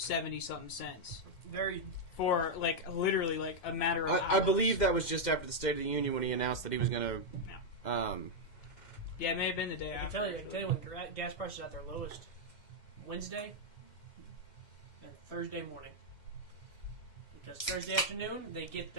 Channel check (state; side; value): late; right; 2.1 ms